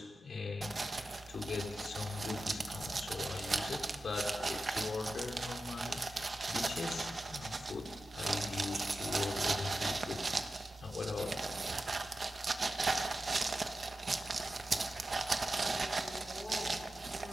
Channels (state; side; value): normal; both; correlation 0.92